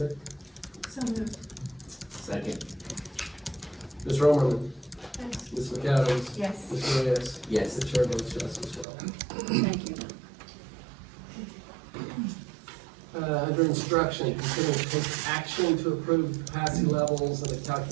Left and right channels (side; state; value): left; drops out; at 8.8 s